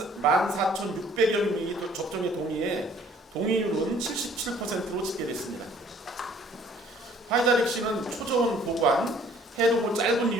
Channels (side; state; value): both; normal; correlation 0.57